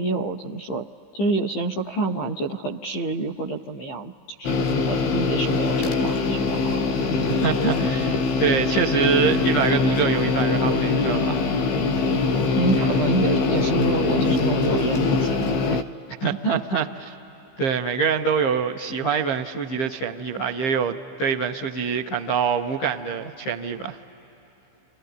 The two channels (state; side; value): late; right; 15 ms